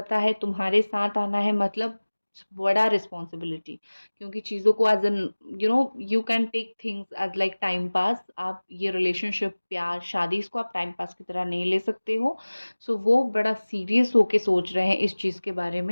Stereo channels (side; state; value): both; inverted; correlation -1.00